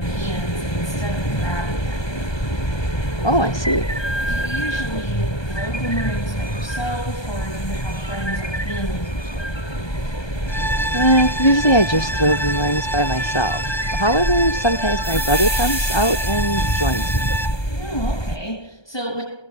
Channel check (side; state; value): right; late; 1.2 ms